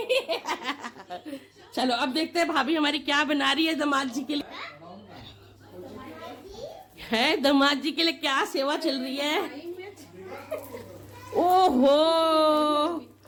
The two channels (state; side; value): identical; both; correlation 1.00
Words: चलो अब देखते हैं भाभी हमारी क्या बना रही है दामाद जी के लिए। है दामाद जी के लिए क्या सेवा चल रही है। ओहो,